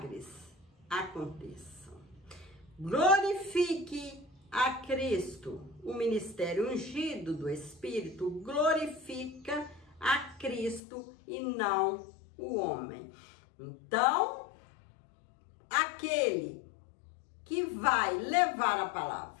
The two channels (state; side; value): drops out; right; at 10.8 s